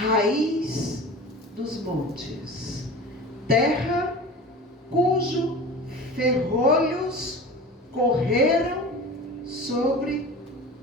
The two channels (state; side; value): normal; both; correlation 0.35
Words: dos montes, terra cujo ferrolhos correram sobre